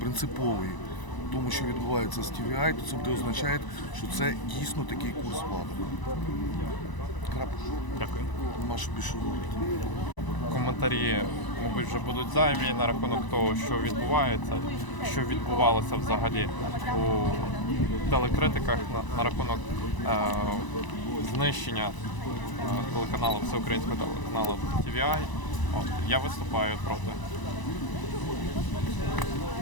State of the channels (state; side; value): late; right; 1.0 ms